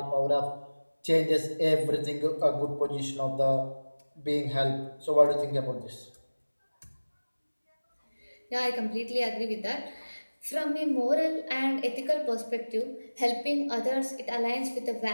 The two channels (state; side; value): inverted; both; correlation -1.00